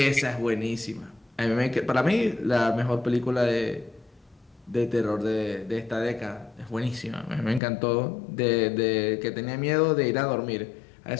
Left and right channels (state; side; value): drops out; right; at 7.6 s